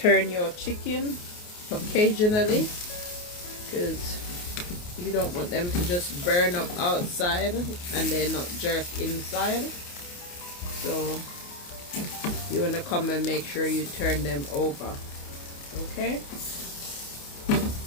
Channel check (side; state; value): right; late; 28 ms